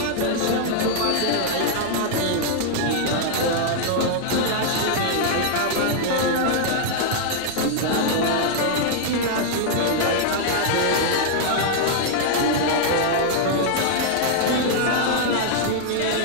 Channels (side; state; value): both; different; correlation -0.01